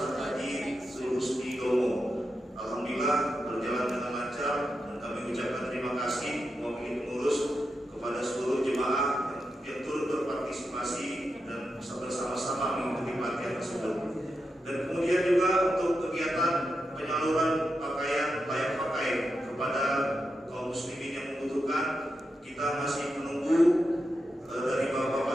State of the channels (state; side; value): normal; both; correlation 0.87